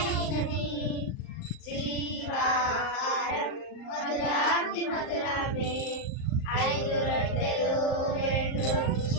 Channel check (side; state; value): right; late; 38 ms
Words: జీవాహారం మధురాతి మధురమే 5 రొట్టెలు 2